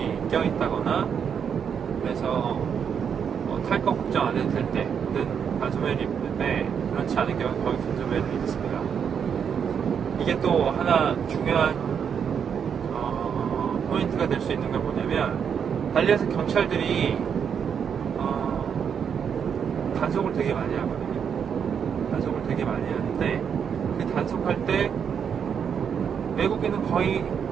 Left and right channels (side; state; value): left; quieter; 7.4 dB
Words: 껴있다거나, 그래서 탈 거 걱정 안 해도 될 때는 반소매를 입는데, 그렇지 않은 경우는 거의 긴 소매를 입습니다. 이게 또 하나 중요한 포인트가 될 수 있는 게 뭐냐면, 발리에서 경찰들이 단속을 되게 많이 하거든요. 단속을 되게 많이 하는데, 그 단속할 때 외국인은 거의